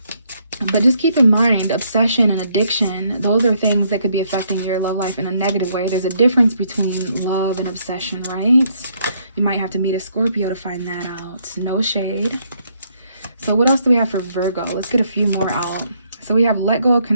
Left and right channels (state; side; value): inverted; both; correlation -0.71